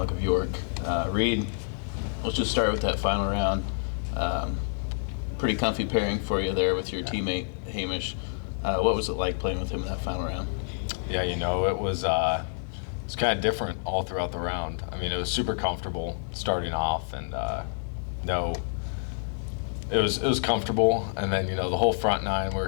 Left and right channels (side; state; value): right; silent; digital silence